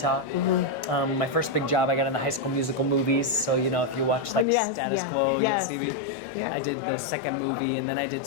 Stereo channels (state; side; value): drops out; right; at 4.5 s